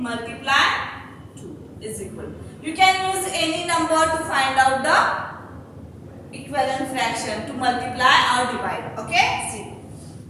multiply 2 is equal. You can use any number to find out the equivalent fraction to multiply or divide. Okay? See.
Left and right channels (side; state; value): both; identical; correlation 1.00